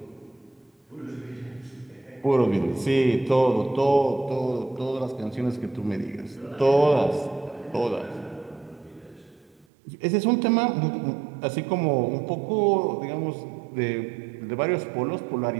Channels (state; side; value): drops out; left; at 9.7 s